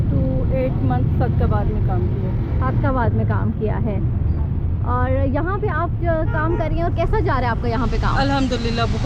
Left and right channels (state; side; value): identical; both; correlation 1.00